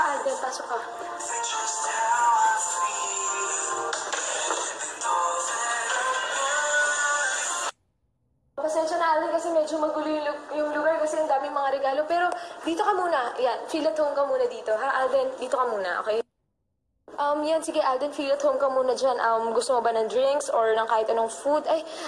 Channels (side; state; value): both; identical; correlation 1.00